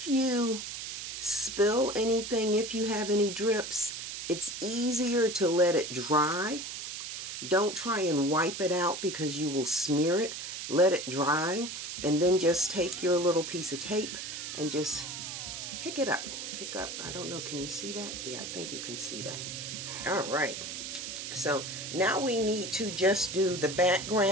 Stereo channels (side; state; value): right; noise; hiss, 7 dB below the sound